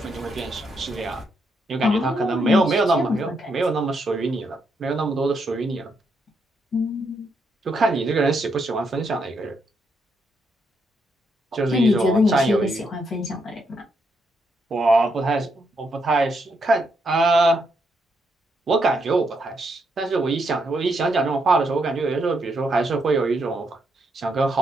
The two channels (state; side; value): normal; both; correlation 0.78